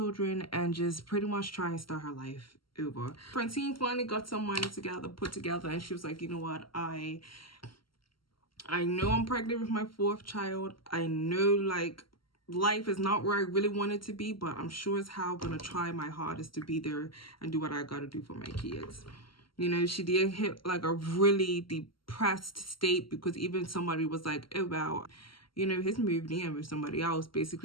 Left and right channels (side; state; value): right; late; 0.74 ms